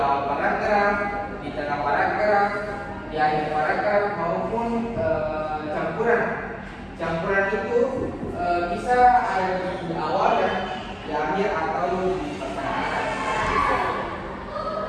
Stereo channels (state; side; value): identical; both; correlation 1.00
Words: paragraf, di tengah paragraf, di akhir paragraf maupun campuran. Campuran itu bisa ada di awal dan di akhir atau di pertengahan.